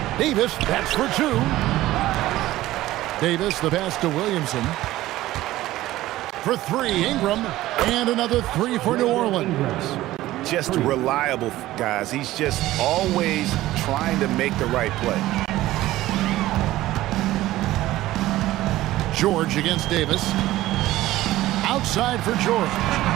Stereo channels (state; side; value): quieter; left; 15.9 dB